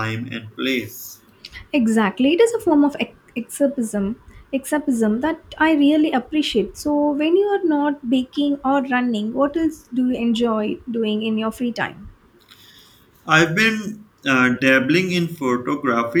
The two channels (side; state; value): both; identical; correlation 1.00